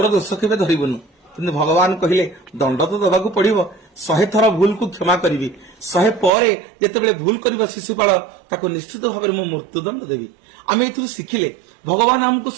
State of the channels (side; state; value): left; drops out; at 6.3 s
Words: दोष केबे धरिबनु। किंतु भगवान कहले दंड तो दबाकू पड़िबो 100 थर भूल को क्षमा करी 100 पर जिते भूल कर शिशुपाल ताको निश्चित भाव में मृत्युदंड देवी। आम ए शिखिले भगवान आमको